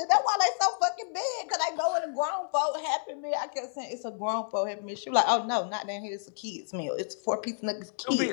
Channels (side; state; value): right; silent; digital silence